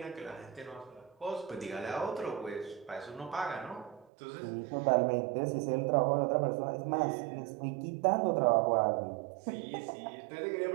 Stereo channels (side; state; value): left; drops out; at 4.1 s